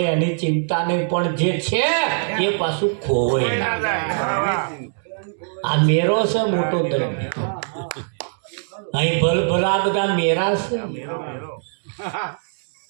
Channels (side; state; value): left; silent; digital silence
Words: એની ચિંતા નહીં, પણ જે છે એ પાછું ખોવાય ના. આ મેરો છે મોટો ધર્મ. અહીં ભલ ભલા બધા મેરા છે.